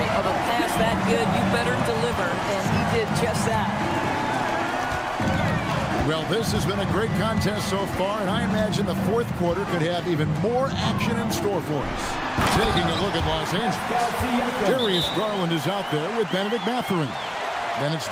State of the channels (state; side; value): identical; both; correlation 1.00